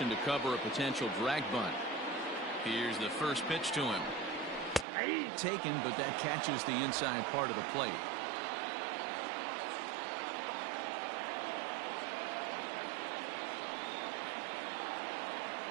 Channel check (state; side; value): drops out; left; at 4.9 s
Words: to cover a potential drag bunt. Here's the first pitch to him. Taken, but that catches the inside part of the plate.